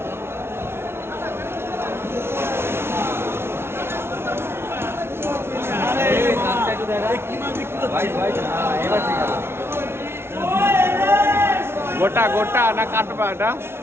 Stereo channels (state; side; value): late; left; 0.12 ms